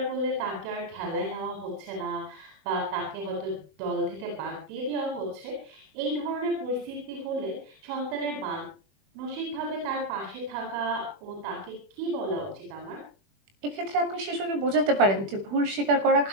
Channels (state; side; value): late; left; 21 ms